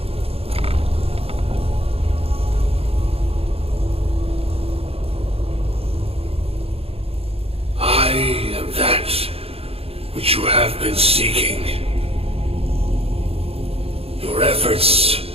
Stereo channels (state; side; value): late; left; 0.28 ms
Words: I am that which you have been seeking. Your efforts